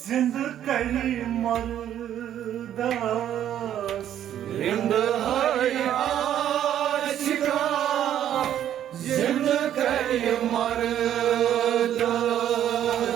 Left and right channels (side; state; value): left; quieter; 10.8 dB